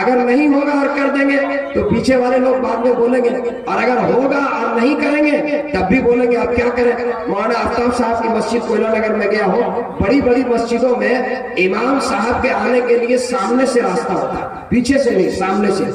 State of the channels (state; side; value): identical; both; correlation 1.00